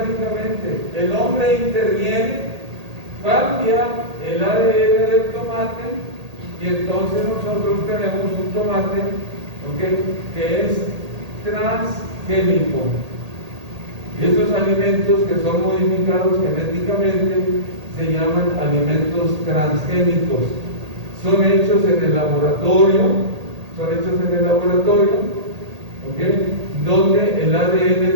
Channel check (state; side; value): late; left; 1.8 ms